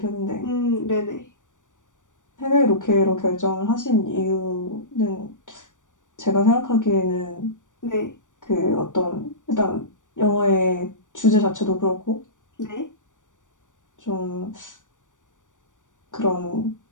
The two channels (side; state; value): right; late; 0.87 ms